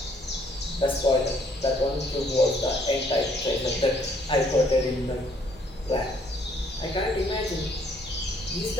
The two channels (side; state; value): both; normal; correlation 0.65